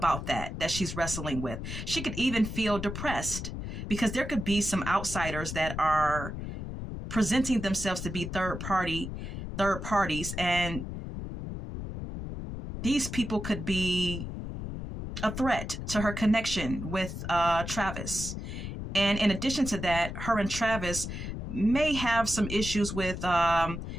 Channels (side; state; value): left; noise; rumble, 6 dB below the sound